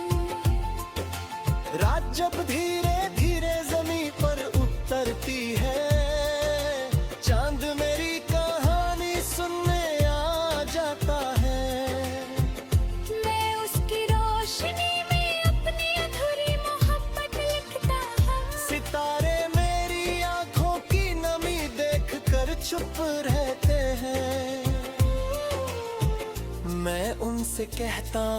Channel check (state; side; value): identical; both; correlation 1.00